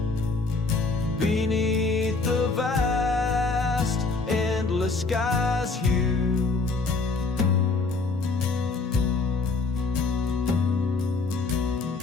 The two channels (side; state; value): right; quieter; 3.9 dB